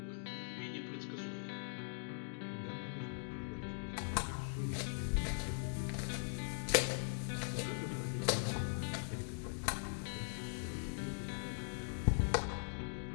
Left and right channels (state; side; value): silent; right; digital silence